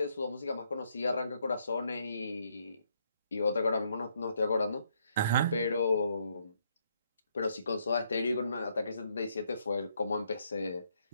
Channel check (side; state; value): both; inverted; correlation -0.73